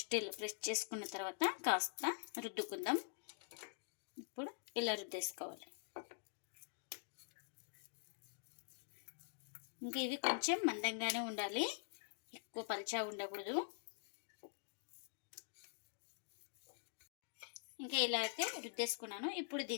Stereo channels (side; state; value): right; silent; digital silence